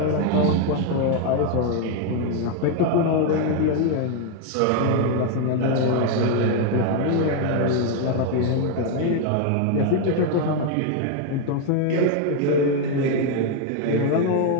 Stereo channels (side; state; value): both; different; correlation 0.01